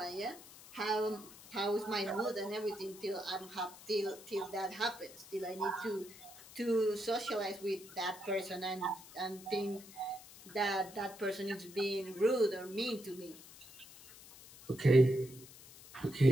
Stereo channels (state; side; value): noise; left; hiss, 18 dB below the sound